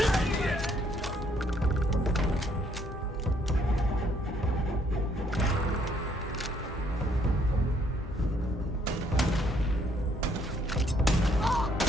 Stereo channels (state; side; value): normal; both; correlation 0.67